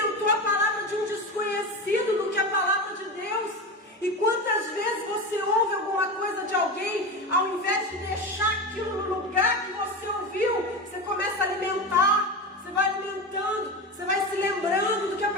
a palavra de um desconhecido do que a palavra de Deus. E quantas vezes você ouve alguma coisa de alguém, ao invés de deixar aquilo no lugar que você ouviu, você começa a alimentar, você vai alimentando, você vai se lembrando do que a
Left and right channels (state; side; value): normal; both; correlation 0.22